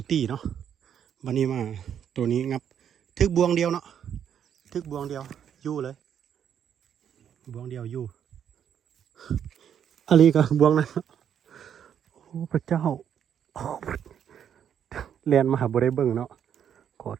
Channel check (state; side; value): quieter; left; 8.9 dB